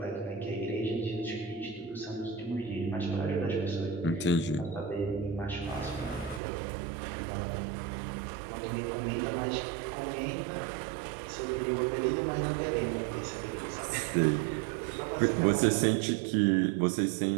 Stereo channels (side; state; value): left; drops out; at 6.4 s